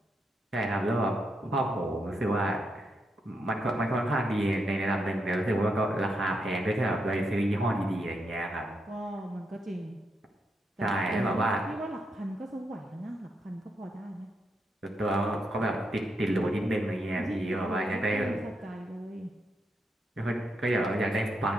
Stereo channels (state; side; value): normal; both; correlation 0.81